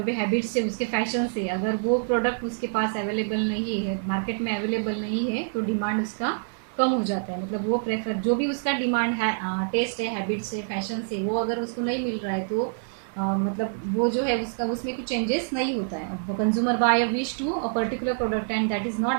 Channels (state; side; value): silent; left; digital silence